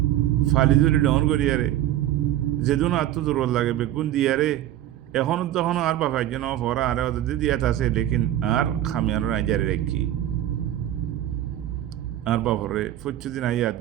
ফালি ধরে ডন করি আরে যেদিন আত্ম দুর্বল লাগে বেগুন দিয়ারে এখনো তখন আর বাপে যেন ভরা আরে ওদের দিয়াত আছে লেকিন আর খামিয়ার রাজারে রেখি আর বাপরে দিন আই ইয়াদ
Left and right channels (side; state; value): left; quieter; 12.7 dB